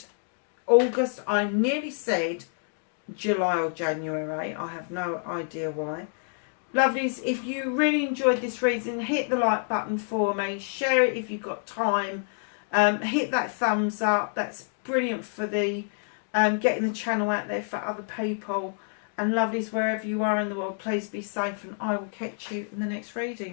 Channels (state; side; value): silent; right; 60 dB below the other